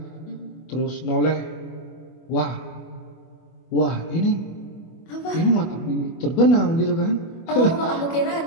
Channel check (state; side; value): late; right; 24 ms